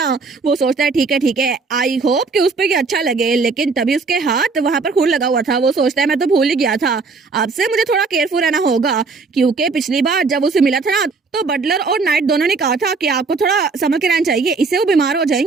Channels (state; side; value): quieter; left; 4.4 dB